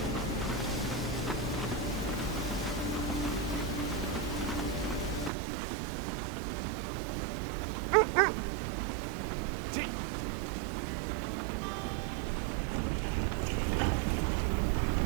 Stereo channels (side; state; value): left; drops out; at 5.3 s